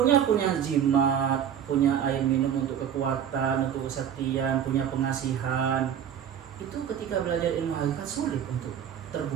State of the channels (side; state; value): left; quieter; 9.0 dB